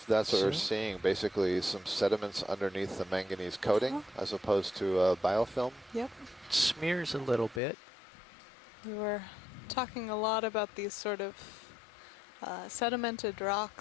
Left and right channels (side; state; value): right; drops out; at 7.6 s